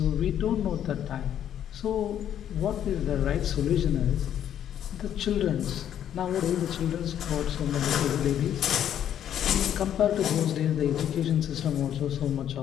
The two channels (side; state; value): right; quieter; 10.2 dB